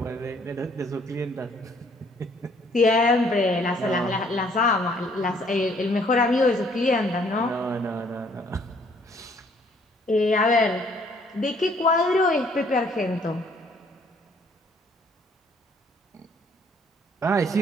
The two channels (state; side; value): normal; both; correlation 0.62